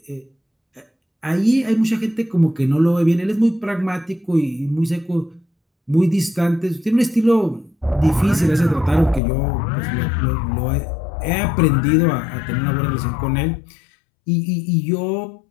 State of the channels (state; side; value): drops out; right; at 9.2 s